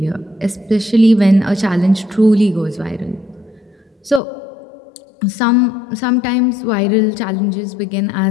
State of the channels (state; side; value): drops out; right; at 4.2 s